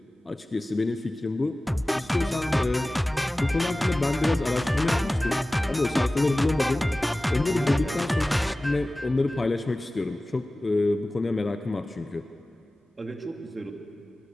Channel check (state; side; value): normal; both; correlation 0.97